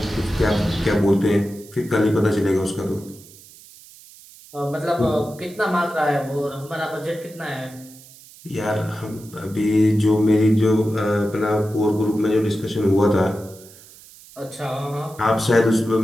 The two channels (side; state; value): right; noise; hiss, 22 dB below the sound